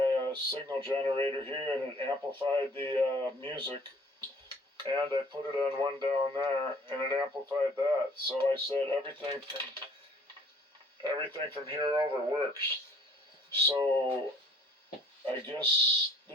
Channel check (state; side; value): normal; both; correlation 0.56